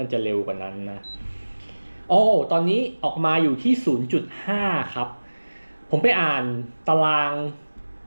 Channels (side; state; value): both; inverted; correlation -1.00